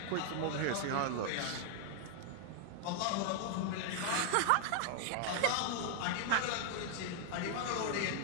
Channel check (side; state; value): both; different; correlation 0.00